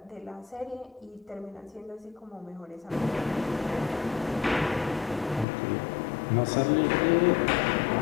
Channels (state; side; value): drops out; right; at 5.5 s